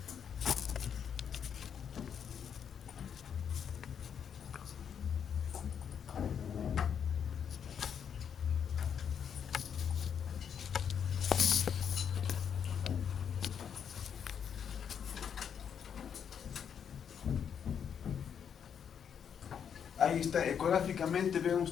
Ahí está, ecográficamente ven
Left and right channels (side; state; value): right; quieter; 7.8 dB